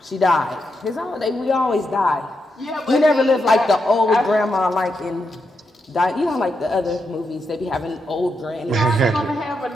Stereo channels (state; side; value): normal; both; correlation 0.84